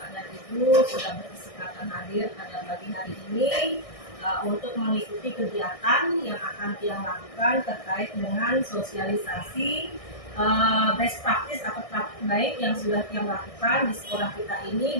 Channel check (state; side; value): late; right; 1.6 ms